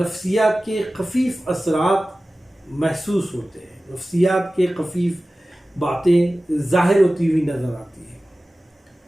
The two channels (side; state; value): both; normal; correlation 0.96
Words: کے خفیف اثرات محسوس ہوتے ہیں، نفسیات کے خفیف باتیں ظاہر ہوتی ہوئی نظر آتی ہیں۔